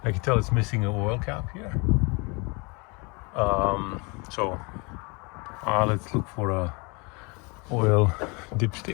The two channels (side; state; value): right; quieter; 29.6 dB